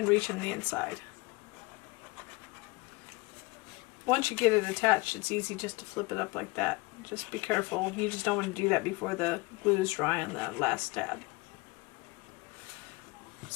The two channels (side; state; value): right; quieter; 25.2 dB